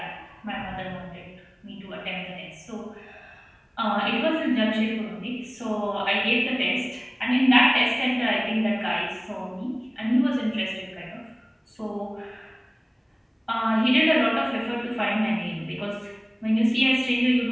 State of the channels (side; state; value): both; identical; correlation 1.00